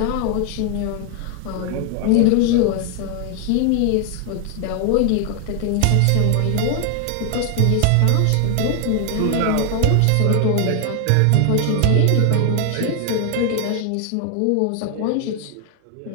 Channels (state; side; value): different; both; correlation 0.00